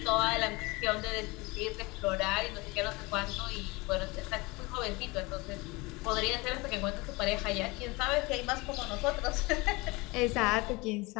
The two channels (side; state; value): right; quieter; 24.4 dB